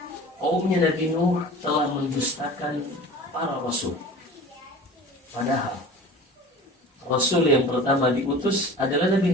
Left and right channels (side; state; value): both; normal; correlation 0.39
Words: Kaumnya Nabi Nuh telah mendustakan para rasul. Padahal rasul yang pertama diutus adalah